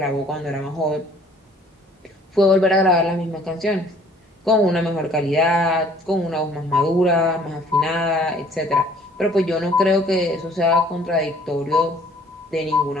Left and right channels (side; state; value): both; normal; correlation 0.56